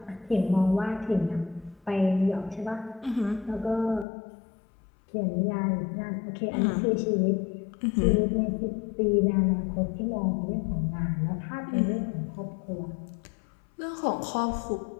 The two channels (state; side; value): drops out; right; at 4.0 s